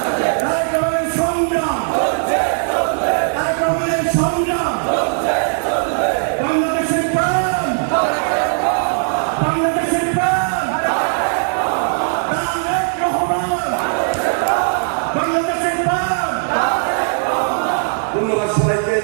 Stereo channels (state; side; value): silent; left; digital silence